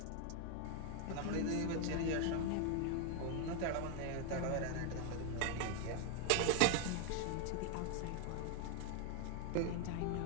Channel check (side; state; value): both; different; correlation 0.00